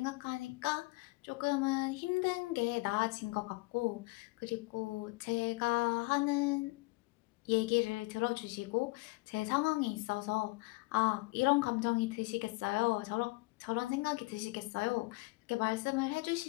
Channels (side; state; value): right; quieter; 25.2 dB